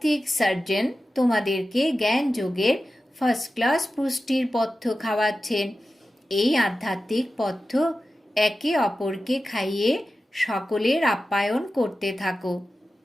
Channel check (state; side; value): normal; both; correlation 0.94